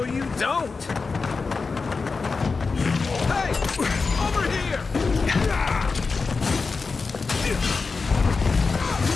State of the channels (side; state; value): right; quieter; 4.5 dB